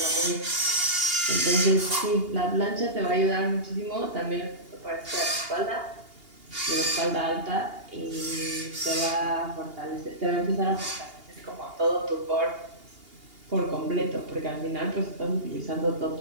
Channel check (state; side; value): late; left; 2.8 ms